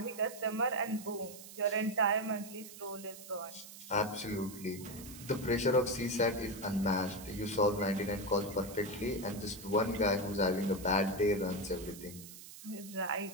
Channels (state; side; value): noise; right; hiss, 15 dB below the sound